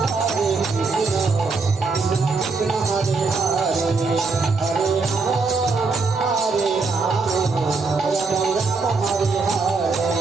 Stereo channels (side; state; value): left; quieter; 4.1 dB